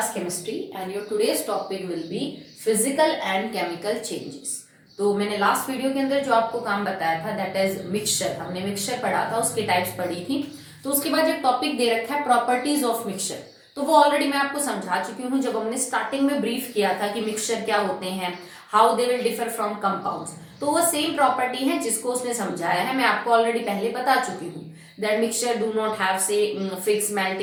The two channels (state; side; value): identical; both; correlation 1.00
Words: chemistry and your today's topic will be physical and chemical changes. तो मैंने last video के अंदर जो आपको काम बताया था दैट इज मिक्सचर, हमने मिक्सचर पढ़ा था, उसकी टाइप्स पढ़ी थी। तो उसके बाद एक टॉपिक दे रखा है प्रॉपर्टीज ऑफ मिक्सचर। तो वो ऑलरेडी मैं आपको समझा चुकी हूँ जब हमने स्टार्टिंग में ब्रीफ किया था कि मिक्सचर क्या होते हैं, how they will differ from compounds. तो वो सेम प्रॉपर्टी है जिसको उसने समझाया है, मैं आपको ऑलरेडी पहले बता चुकी हूँ। That mixture do not have say fixed